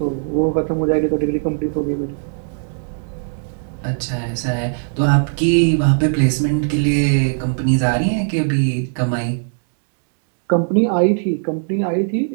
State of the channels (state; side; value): silent; left; digital silence